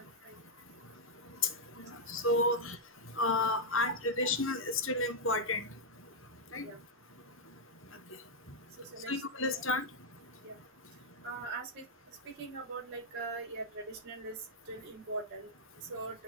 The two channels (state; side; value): normal; both; correlation -0.04